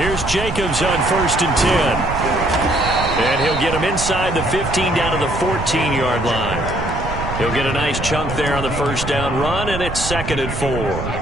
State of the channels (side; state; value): right; noise; rumble, 6 dB below the sound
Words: Jacobs on 1st and 10. And he'll get him inside the 15 down to the 14-yard line. He'll get a nice chunk there on the 1st down run, and it's 2nd and 4.